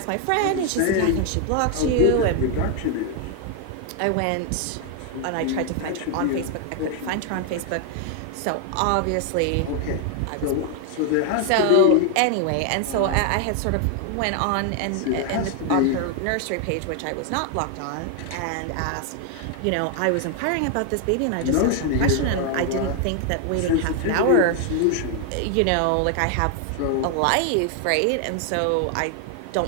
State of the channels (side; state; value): both; different; correlation 0.00